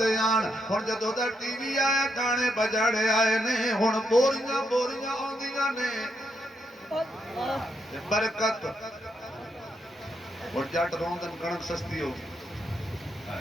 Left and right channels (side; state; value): both; normal; correlation 0.79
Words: ਆਣ ਹੁਣ ਜਦੋਂ ਦਾ ਟੀਵੀ ਆਇਆ ਗਾਣੇ ਬਜੜ ਆਏ ਨੇ ਹੁਣ ਬੋਰੀਆਂ ਬੋਰੀਆਂ ਆਉਂਦੀਆਂ ਨੇ ਤੇ ਬਰਕਤ ਹੁਣ ਜੱਟ ਰੋਂਦਨ ਕਣਕ ਸਸਤੀ ਹੋ